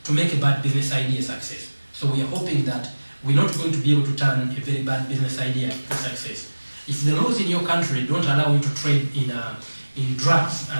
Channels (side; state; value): both; inverted; correlation -1.00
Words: to make a bad business idea success. So we are hoping that we're not going to be able to turn a very bad business idea to success. If the laws in your country don't allow you to trade in drugs